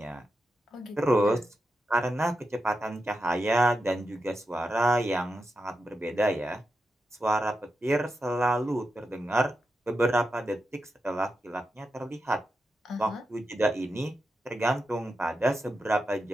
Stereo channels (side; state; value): both; normal; correlation 0.88